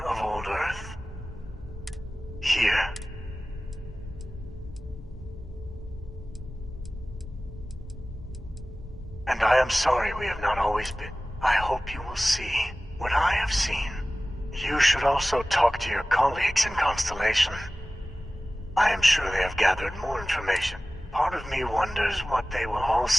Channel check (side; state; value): both; normal; correlation 0.97